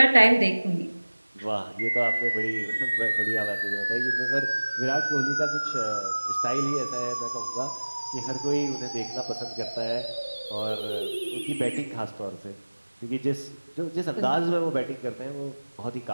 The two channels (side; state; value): both; inverted; correlation -1.00